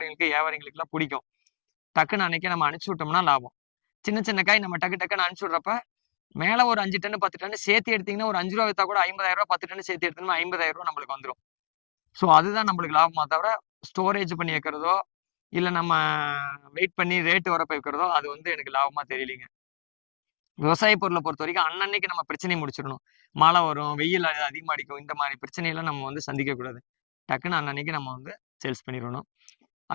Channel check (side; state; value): right; silent; digital silence